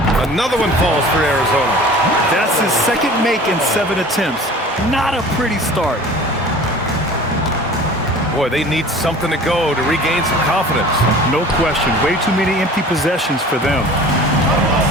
another one falls for Arizona. That's his second make in 7 attempts. Not a pretty start. Boy, they need something to go to regain some confidence. No question. Way too many empty possessions for them.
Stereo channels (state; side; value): normal; both; correlation 0.43